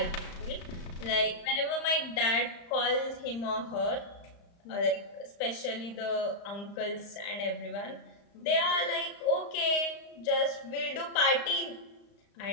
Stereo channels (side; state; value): right; late; 35 ms